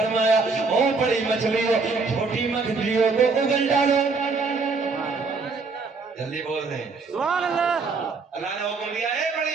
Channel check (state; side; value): quieter; left; 4.3 dB